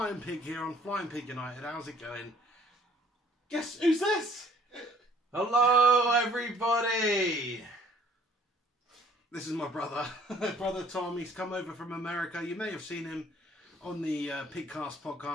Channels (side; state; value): both; normal; correlation 0.58